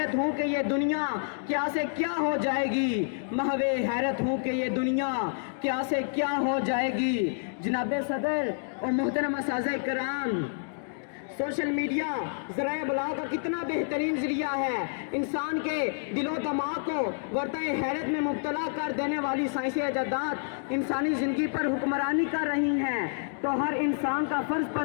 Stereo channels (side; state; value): right; silent; digital silence